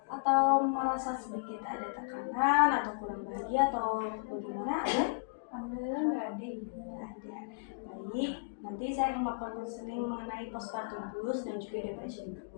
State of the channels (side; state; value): right; quieter; 34.6 dB